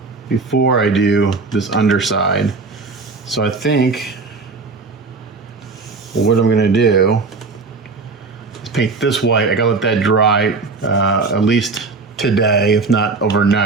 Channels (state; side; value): quieter; left; 4.1 dB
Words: before I do this underside. So I think what I'm gonna do is paint this white. I gotta let that dry at least today, if not